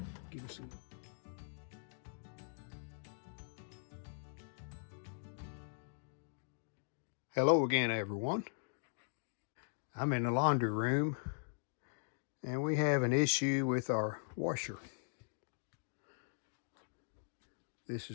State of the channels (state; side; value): silent; right; digital silence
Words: give us some. Hello again, everyone. I'm in the laundry room and we have an issue with our washer. This